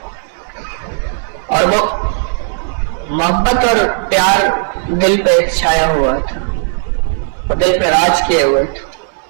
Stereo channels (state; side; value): silent; left; 69 dB below the other